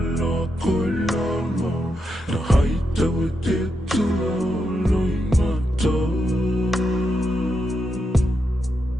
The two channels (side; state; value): both; normal; correlation 0.84